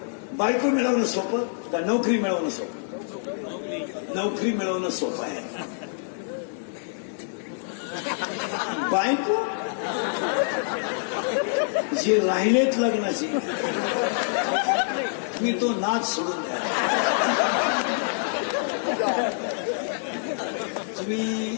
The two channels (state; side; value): silent; right; digital silence